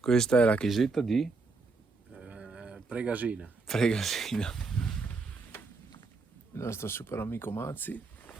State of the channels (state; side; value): quieter; left; 4.1 dB